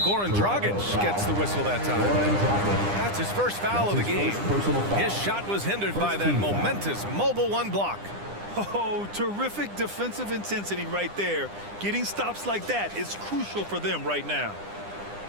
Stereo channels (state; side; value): late; left; 9.9 ms